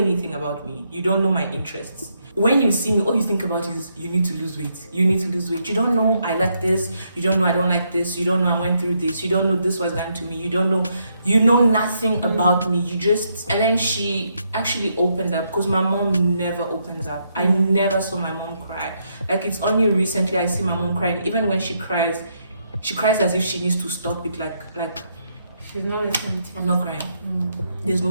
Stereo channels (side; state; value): both; inverted; correlation -0.77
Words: about me. You don't know my interests. When you see me, all you think about is you need to lose weight. You need to lose weight. You don't know I like this. You don't know I don't like this. You don't know I went through this. You don't know this was done to me. You don't know. You know nothing about me. You just... And then she actually opened up, because my mom never opens up. I never saw my mom cry. Like, it's only recently I see my mom crying. Even when she cries as if she needs to stop it. Like She's not listening to you. I'm not crying. There's